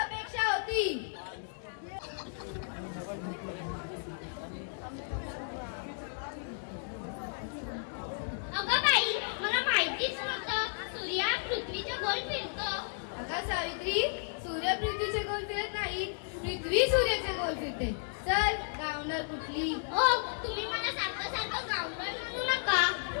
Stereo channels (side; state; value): right; silent; digital silence